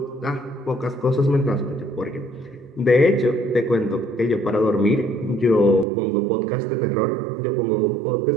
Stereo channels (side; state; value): left; drops out; at 5.9 s